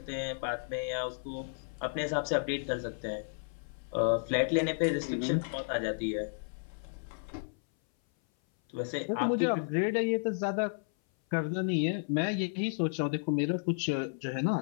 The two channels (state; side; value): silent; right; 56 dB below the other